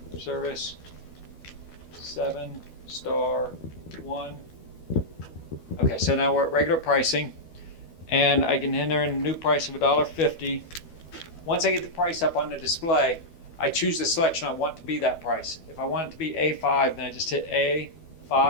Service, 7, star, 1. Okay, so now we're at regular pricing, and I can enter in a new price of $1.50. Once I get the price up on the display, I choose the selection I want to be that price. If I want it to be A5, then I just hit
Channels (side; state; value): right; late; 12 ms